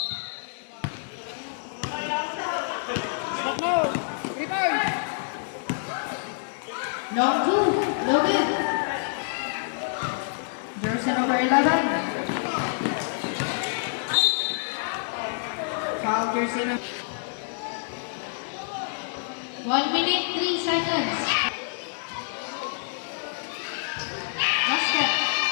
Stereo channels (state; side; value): silent; right; digital silence